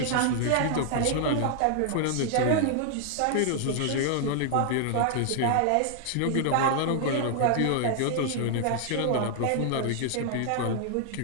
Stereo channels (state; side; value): different; both; correlation 0.00